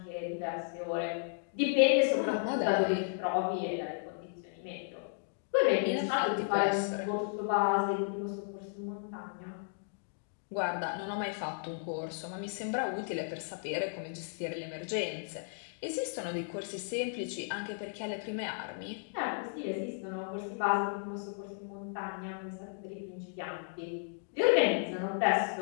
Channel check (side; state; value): right; silent; digital silence